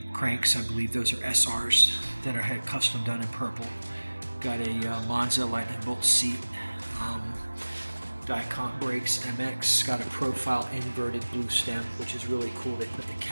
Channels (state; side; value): inverted; both; correlation -1.00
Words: cranks. I believe those are SRs that are had custom done in purple. Got a Monza Lightning Bolt seat, Dicont brakes, MX. Got a profile inverted blue stem, which is really cool. They put the